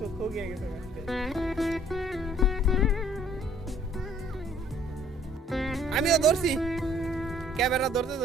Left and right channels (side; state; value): both; normal; correlation 0.59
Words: গিয়ে গেছে আমিও ধরছি ক্যামেরা ধরতে